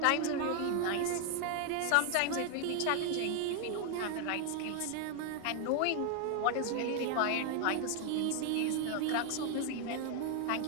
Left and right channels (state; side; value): different; both; correlation 0.00